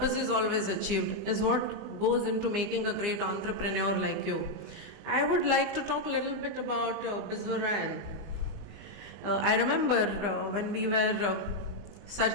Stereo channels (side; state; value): left; late; 20 ms